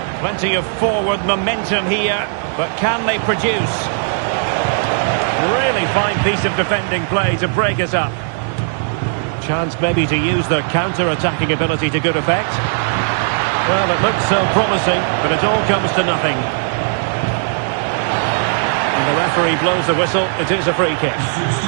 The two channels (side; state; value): left; silent; digital silence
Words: Plenty of forward momentum here, but can they produce? Really fine piece of defending play to break us up. Chance maybe to use their counter-attacking ability to good effect. Well, it looks so promising, but it all comes to nothing. And the referee blows the whistle. It is a free kick.